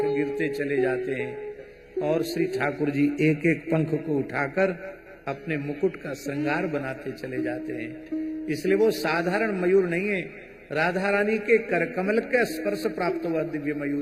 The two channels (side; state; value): both; identical; correlation 1.00